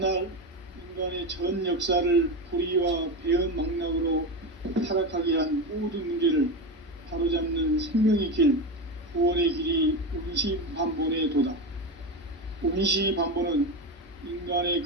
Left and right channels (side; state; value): both; normal; correlation 0.18